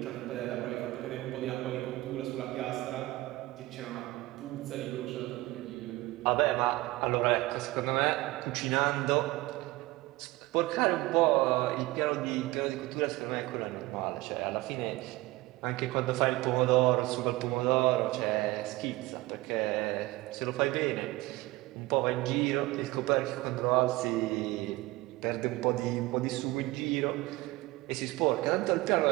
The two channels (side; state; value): left; quieter; 19.9 dB